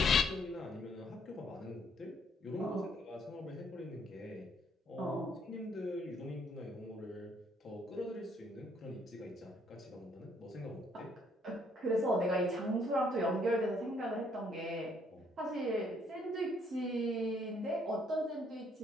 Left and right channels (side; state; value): both; normal; correlation 0.67